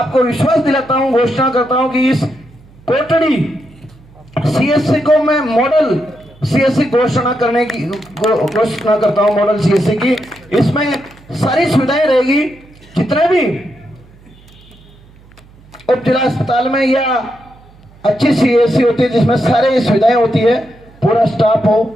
विश्वास दिलाता हूँ, घोषणा करता हूँ कि इस कोटड़ी CSC को मैं मॉडल CSC घोषणा करने की घोषणा करता हूँ, मॉडल CSC की। इसमें सारी सुविधाएं रहेगी, जितने भी उप जिला अस्पताल में या अच्छी CSC होती है जिसमें सारी सुविधाएं होती है, पूरा स्टाफ हो,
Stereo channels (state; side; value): noise; right; hum, 26 dB below the sound